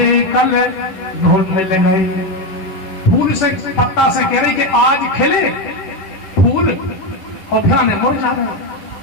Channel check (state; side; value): late; right; 11 ms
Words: कल धूल मिल गए। फूल से पत्ता से कह रही कि आज खिले फूल और फिर मुरझा गए,